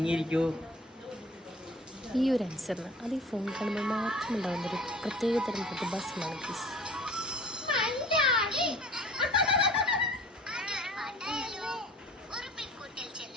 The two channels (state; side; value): normal; both; correlation 0.46